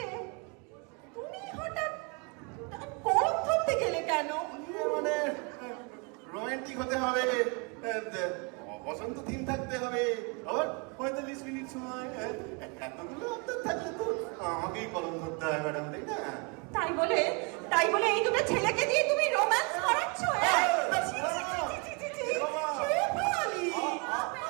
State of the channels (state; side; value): quieter; left; 32.2 dB